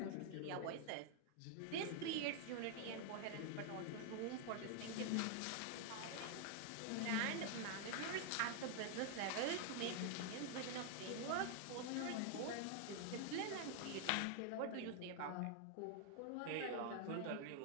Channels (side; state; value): both; different; correlation 0.00